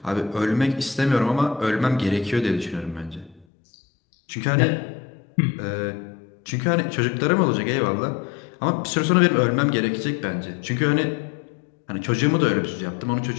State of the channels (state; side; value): drops out; right; at 3.5 s